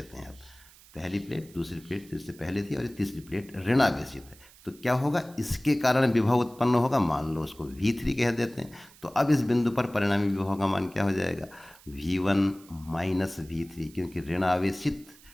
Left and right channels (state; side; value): noise; right; hiss, 24 dB below the sound